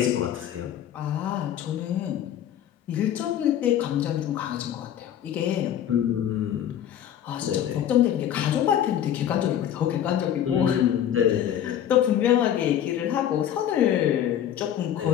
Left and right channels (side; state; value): right; quieter; 10.4 dB